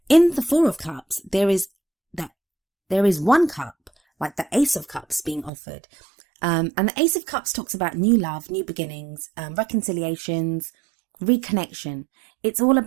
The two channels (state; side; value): drops out; left; at 5.5 s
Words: In the Four of Cups, there is one cup, like the Ace of Cups being offered. And the Ace of Cups talks about new love, new beginnings, reconciliations, reconnection. It's all